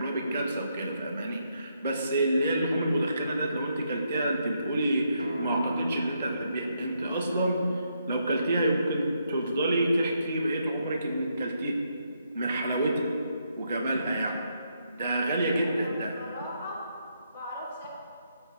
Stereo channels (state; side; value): inverted; both; correlation -0.77